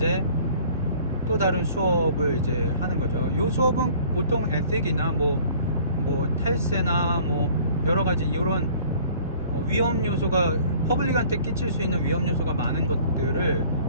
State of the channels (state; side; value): inverted; both; correlation -0.53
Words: 또 다른 수업을 이제 하는 거죠. 이 수업은 보통 에틱이나 뭐 탈세나 뭐 여러가지 이런 위험 요소가 퍼블릭한테 끼칠 수 있는 위험 요소가 많은 것들을